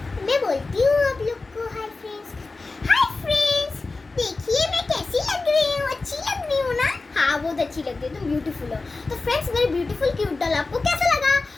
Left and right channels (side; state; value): right; quieter; 3.7 dB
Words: मैं बोलती हूँ आप लोग को। Hi friends. हाय फ्रेंड्स, देखिए मैं कैसी लग रही हूँ। अच्छी लग रही हूँ ना? हाँ बहुत अच्छी लग रही है, तुम ब्यूटीफुल हो। तो फ्रेंड्स, मेरी ब्यूटीफुल क्यूट डॉल आपको कैसा लगा?